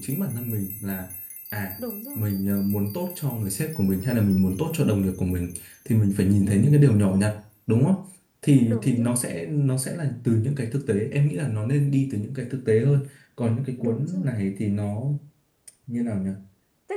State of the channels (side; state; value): both; identical; correlation 1.00